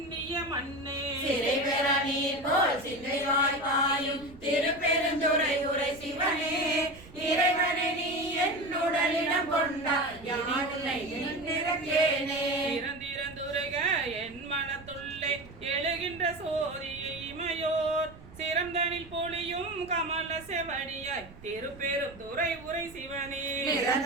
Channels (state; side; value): noise; right; rumble, 20 dB below the sound